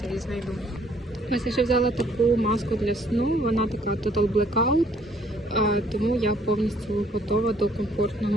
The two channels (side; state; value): both; normal; correlation 0.63